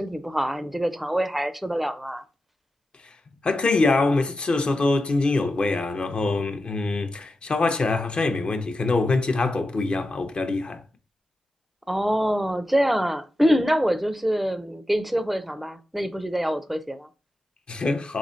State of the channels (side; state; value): both; normal; correlation 0.91